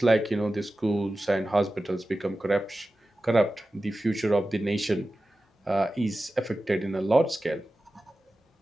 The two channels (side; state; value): both; normal; correlation 0.95